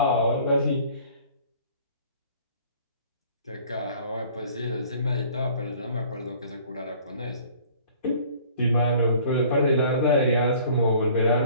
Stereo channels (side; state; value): both; inverted; correlation -0.51